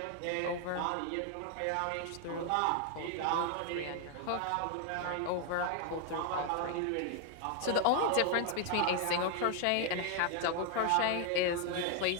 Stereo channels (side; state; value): both; different; correlation 0.00